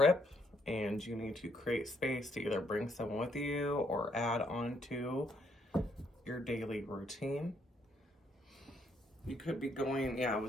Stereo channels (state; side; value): normal; both; correlation 0.72